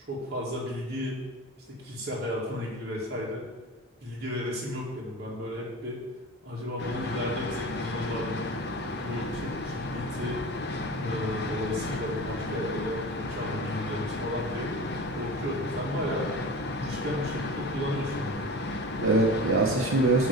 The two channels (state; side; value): normal; both; correlation 0.33